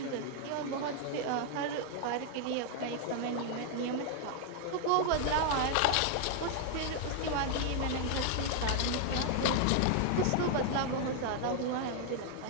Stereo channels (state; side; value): different; both; correlation 0.00